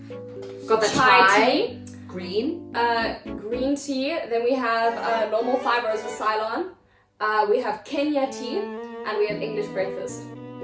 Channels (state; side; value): identical; both; correlation 1.00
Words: Got the chai tea. Green. Green tea. Then we have normal 5 roses Ceylon. We have Kenya tea. And we have English breakfast.